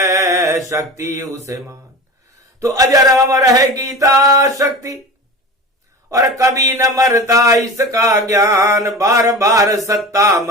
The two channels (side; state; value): both; normal; correlation 0.32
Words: शक्ति उसे मान। तो अजर अमर है गीता शक्ति और कभी न मरता इसका ज्ञान। बार बार सत्ता